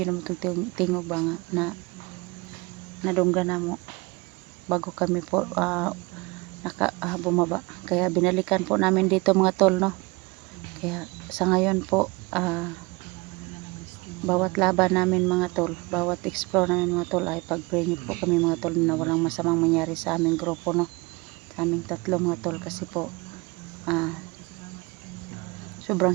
naman tingog ba nga na nadungga na mo bago kami po bumaba, kaya binalikan po namin dito mga tol, no. Kaya sa ngayon po bawat laban namin mga tol, bawat explore namin mga tol ay pag-pray niyo po kami mga tol na walang masamang mangyari sa aming grupo, no, sa aming tatlo mga tol, kasi po sobrang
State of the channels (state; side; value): quieter; left; 25.3 dB